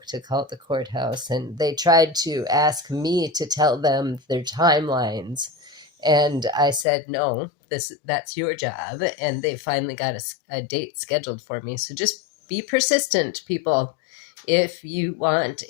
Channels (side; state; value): right; drops out; at 6.9 s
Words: to call the courthouse. And they tried to ask me to tell them their timelines. And I said, no, that's your job. And they finally got a date scheduled for me. So just be persistent, people. If you want